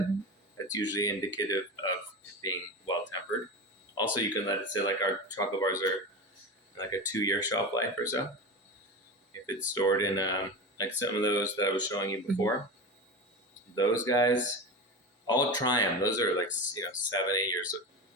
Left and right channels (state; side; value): normal; both; correlation 0.25